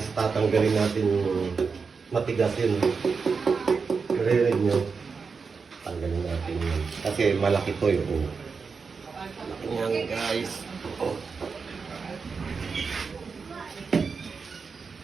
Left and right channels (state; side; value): quieter; left; 5.2 dB